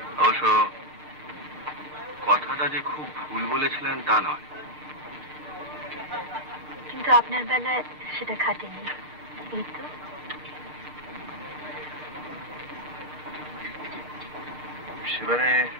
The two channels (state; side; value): late; right; 6.8 ms